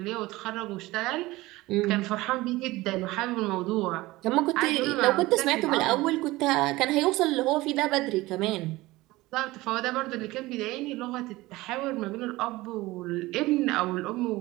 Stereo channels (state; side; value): quieter; left; 19.5 dB